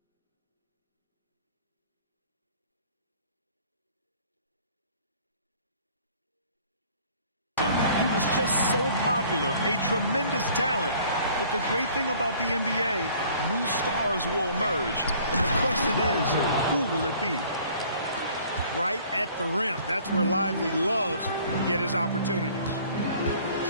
He was just so popular, a tremendous talent. But the great thing about the NBA, new stars will emerge. And the question is, who will it be? Right at the rim. That's where Lively loves to get his opportunities.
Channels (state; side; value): inverted; both; correlation -0.54